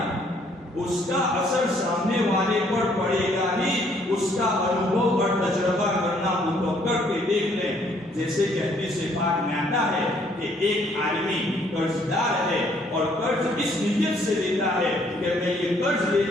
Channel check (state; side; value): normal; both; correlation 0.65